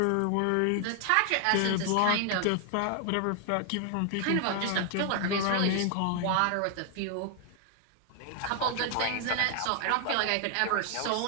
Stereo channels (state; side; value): different; both; correlation 0.00